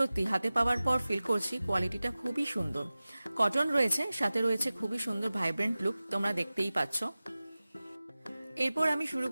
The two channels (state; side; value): inverted; both; correlation -0.97